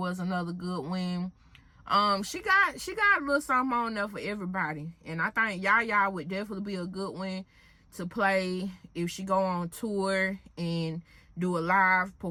another good one. She got a little something on there for everybody, and I think Yaya would definitely be a good one to play if she go on tour and do a live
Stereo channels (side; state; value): both; identical; correlation 1.00